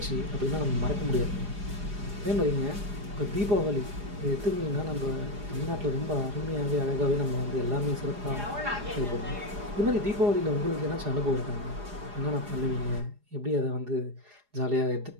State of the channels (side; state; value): left; late; 4.9 ms